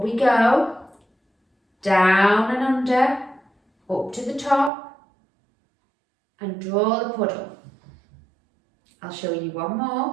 we go. Down and under. Up to the top. And draw the puddle. I'll show you one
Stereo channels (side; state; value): left; drops out; at 4.7 s